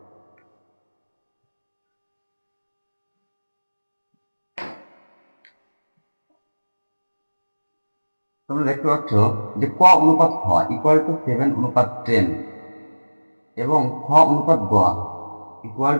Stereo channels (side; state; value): both; inverted; correlation -1.00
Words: তোমরা দেখতে পাচ্ছ যে ক অনুপাত খ ইকুয়াল টু 7:10 এবং খ অনুপাত গ ইকুয়াল